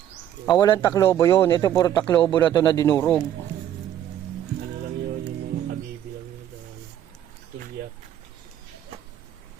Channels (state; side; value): quieter; left; 10.9 dB